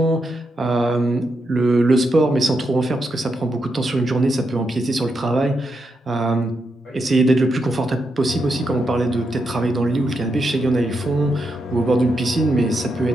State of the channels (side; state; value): both; normal; correlation 0.83